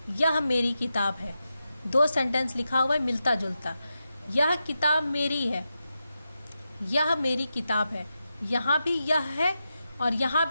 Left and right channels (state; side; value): inverted; both; correlation -0.89